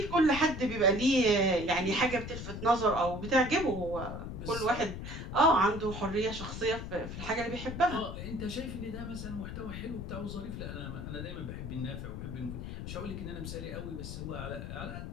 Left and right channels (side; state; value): left; noise; rumble, 7 dB below the sound